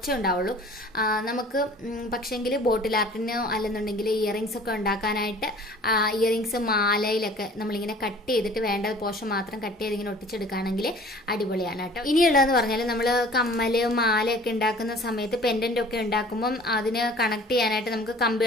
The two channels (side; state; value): both; normal; correlation 0.48